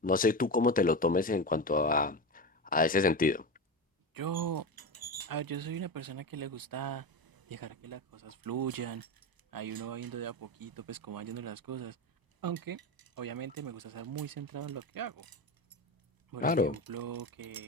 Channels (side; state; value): both; normal; correlation 0.21